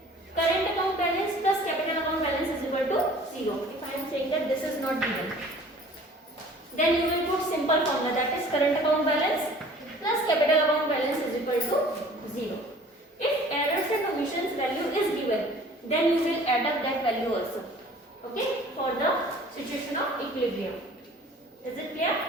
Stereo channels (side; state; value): both; normal; correlation 0.49